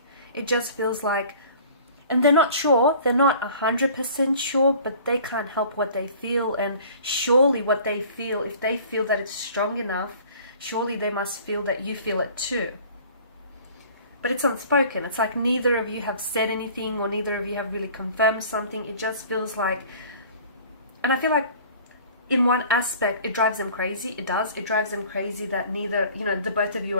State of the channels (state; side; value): inverted; both; correlation -0.48